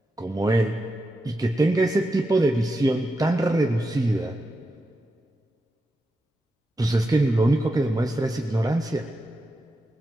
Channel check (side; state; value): both; normal; correlation 0.88